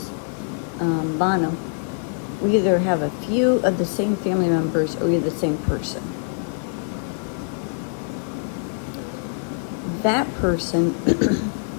Bono. We either have a few of the same family members or we're the same person. That person,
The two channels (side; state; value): right; silent; 63 dB below the other